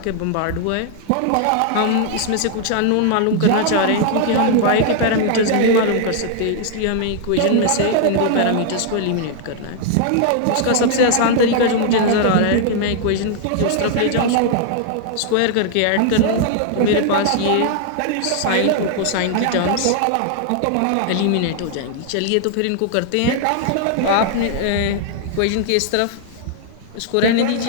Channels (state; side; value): different; both; correlation 0.00